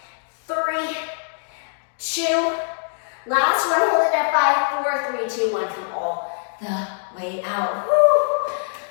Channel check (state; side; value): silent; right; digital silence